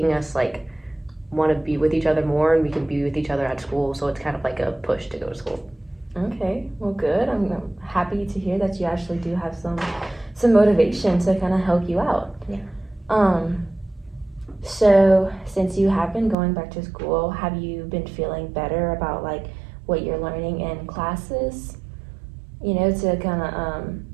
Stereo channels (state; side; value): drops out; left; at 16.4 s